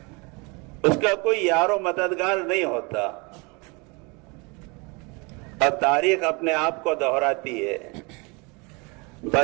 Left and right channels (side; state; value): left; quieter; 29.2 dB